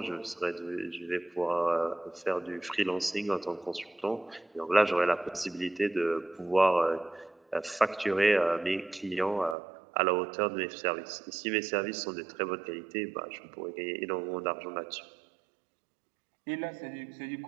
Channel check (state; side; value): drops out; left; at 9.6 s